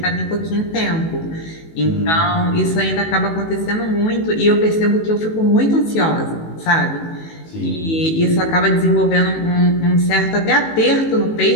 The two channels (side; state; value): right; late; 18 ms